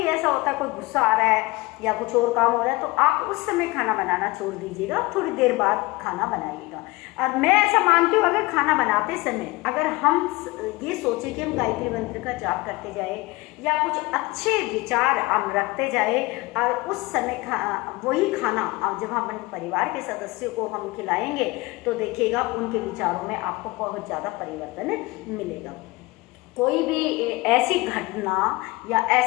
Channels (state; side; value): quieter; right; 22.4 dB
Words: ऐसा होता है कोई गुस्सा आ रहा है या कुछ और काम हो रहा है, तो आप उस समय खाना बनाना छोड़ दीजिएगा, थोड़ी देर बाद खाना बनाइएगा। और मैं ऐसा मानती हूँ, अगर खाना बनाते समय अगर हम ये सोचें कि हम गायत्री मंत्र का जाप करते जाए या कुछ अच्छे विचार हम रखते जाए और उस समय वही खाना जब हम अपने परिवार के सदस्यों को हम खिलाएंगे तो देखिएगा उनके विचारों में आपको बहुत ज़्यादा परिवर्तन मिलेगा। कोई भी ऐसी घटना या